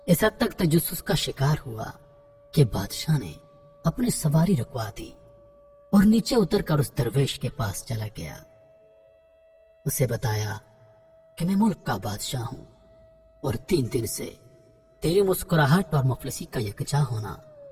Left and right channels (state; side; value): identical; both; correlation 1.00